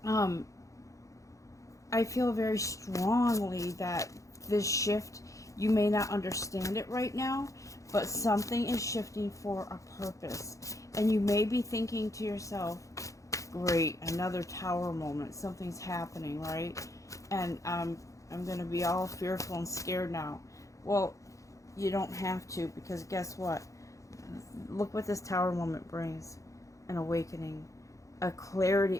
I feel very strongly that this shift, you may not understand it right now, but something is shifting for a purpose. And you may be thinking to yourself, great, another tower moment, something's happening, right? And I'm going to be all fearful and scared now. Well, you don't have to, because guess what? Look what this tower moment brings. An awakening, a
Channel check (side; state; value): right; late; 0.15 ms